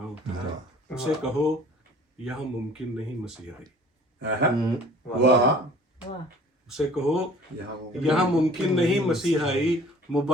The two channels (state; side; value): normal; both; correlation 0.50